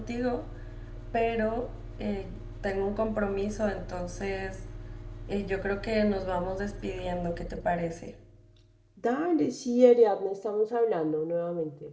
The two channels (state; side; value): identical; both; correlation 1.00